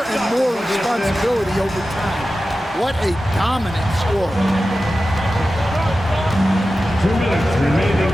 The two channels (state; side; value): normal; both; correlation 0.94